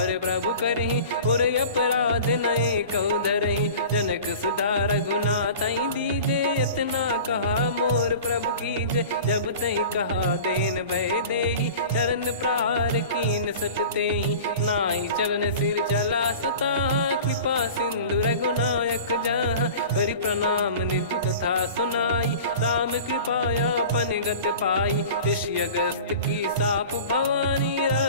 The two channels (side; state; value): both; inverted; correlation -0.39